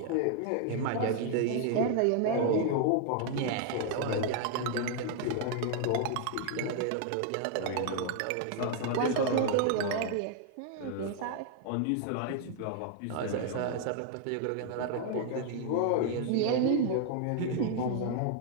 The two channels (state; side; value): different; both; correlation 0.00